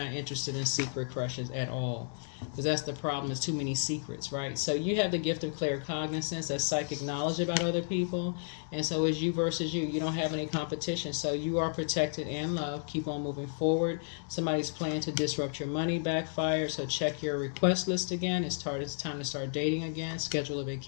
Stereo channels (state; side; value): silent; right; digital silence